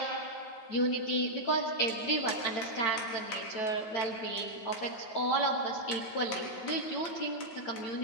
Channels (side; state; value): right; late; 9.2 ms